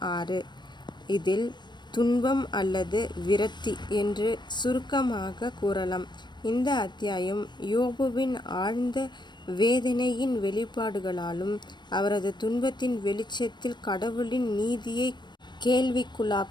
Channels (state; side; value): late; right; 0.22 ms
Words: 6. இதில் துன்பம் அல்லது விரக்தி என்று சுருக்கமாக கூறலாம். இந்த அத்தியாயம் யோபுவின் ஆழ்ந்த வேதனையின் வெளிப்பாடுகளாலும் அவரது துன்பத்தின் வெளிச்சத்தில் கடவுளின் நீதியை